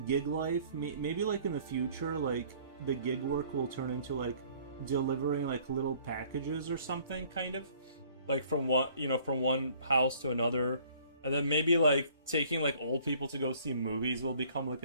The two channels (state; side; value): inverted; both; correlation -0.57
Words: gig life, maybe like in the future, like the gig work will turn into like delivering like little packages or something, kind of like from from one house to another, and then maybe like taking like old people to go see movies will become like